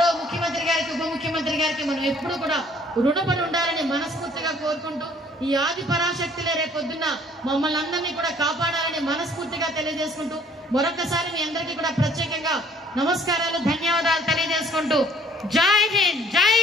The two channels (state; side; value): normal; both; correlation 0.58